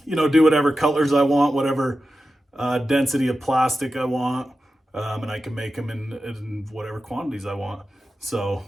do whatever colors I want, whatever density of plastic I want, and I can make them in whatever quantities I want. So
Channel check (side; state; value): both; normal; correlation 0.92